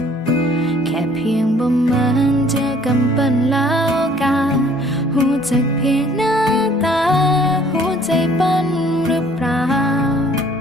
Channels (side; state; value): both; normal; correlation 0.57